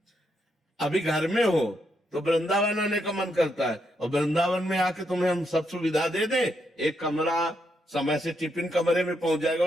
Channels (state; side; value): normal; both; correlation 0.79